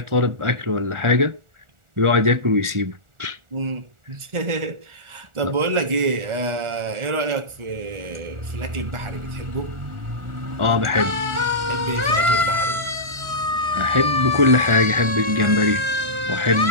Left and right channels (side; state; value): left; late; 1.4 ms